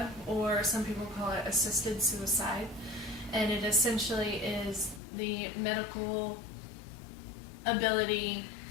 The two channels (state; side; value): drops out; right; at 5.0 s